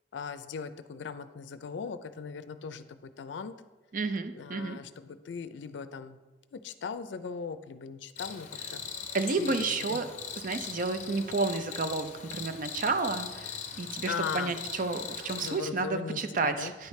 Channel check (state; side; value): normal; both; correlation 0.10